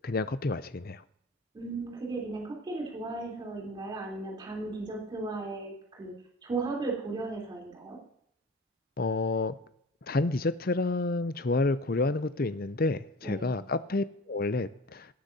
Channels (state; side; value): normal; both; correlation 0.39